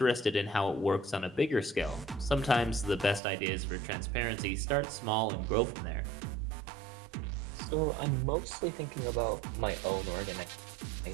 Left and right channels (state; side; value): drops out; left; at 3.2 s